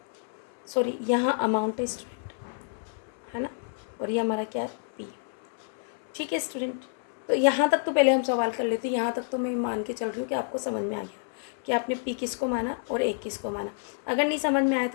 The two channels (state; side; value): silent; right; 59 dB below the other